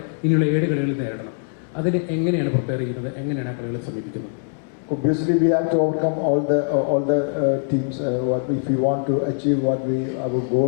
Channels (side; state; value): right; silent; digital silence